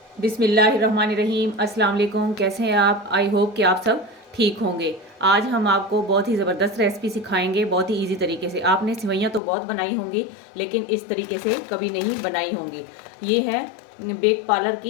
बिस्मिल्लाहिर्रहमानिर्रहीम। अस्सलाम वालेकुम। कैसे हैं आप? आई होप कि आप सब ठीक होंगे। आज हम आपको बहुत ही ज़बरदस्त रेसिपी सिखाएंगे, बहुत ही इजी तरीके से। आपने सिवैयाँ तो बहुत बनाई होंगी, लेकिन इस तरीके से कभी नहीं बनाई होंगी। ये है बेक पार्लर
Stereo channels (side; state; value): right; drops out; at 9.4 s